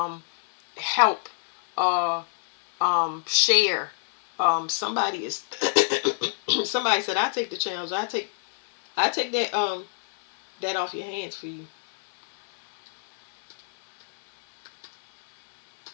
help, share. Somebody is somebody said, I take the challenge. I take that off your hands for you.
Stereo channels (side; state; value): right; silent; digital silence